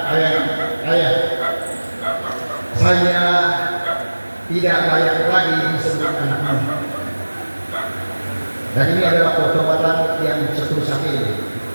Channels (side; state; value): both; inverted; correlation -1.00